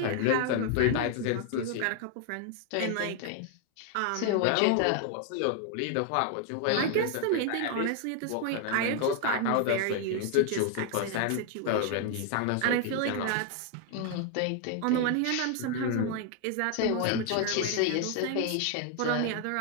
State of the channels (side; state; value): both; different; correlation 0.00